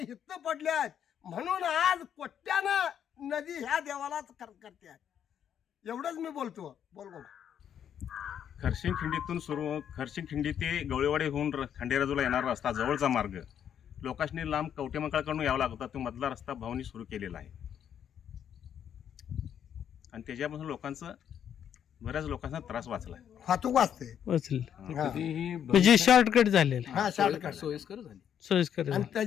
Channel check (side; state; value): right; quieter; 9.1 dB